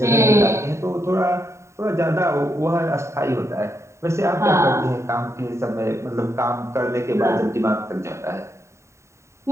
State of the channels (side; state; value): left; late; 0.14 ms